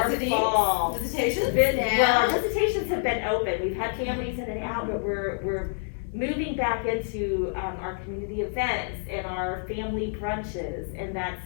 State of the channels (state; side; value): silent; right; digital silence